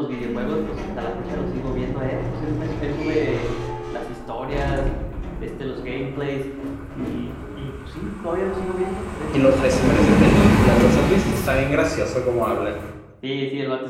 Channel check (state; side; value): identical; both; correlation 1.00